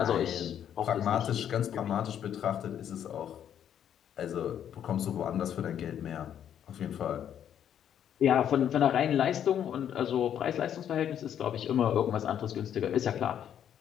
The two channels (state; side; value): quieter; right; 9.6 dB